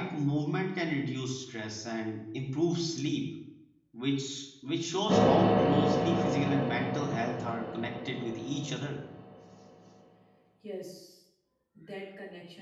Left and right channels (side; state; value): both; identical; correlation 1.00